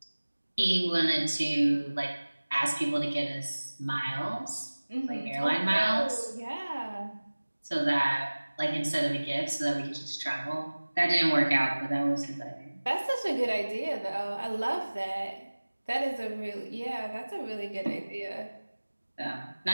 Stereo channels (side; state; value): both; inverted; correlation -1.00